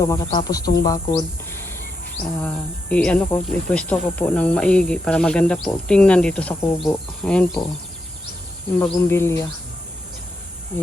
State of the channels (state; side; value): normal; both; correlation 0.83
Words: makatapos tong bakod. Ipwesto ko po ng maigi para maganda po tingnan dito sa kubo. Ayan po. Yung bagumbilya.